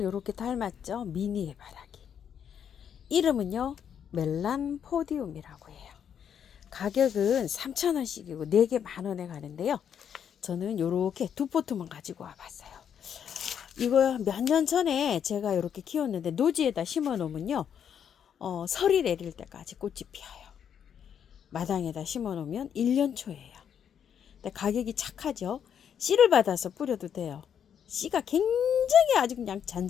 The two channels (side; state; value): right; quieter; 8.4 dB